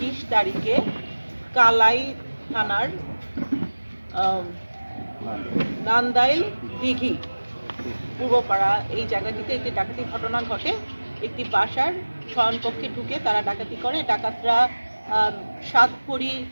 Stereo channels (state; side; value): inverted; both; correlation -1.00